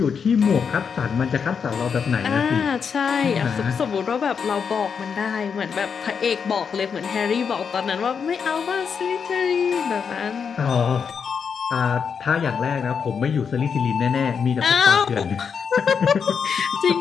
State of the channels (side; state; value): right; quieter; 6.4 dB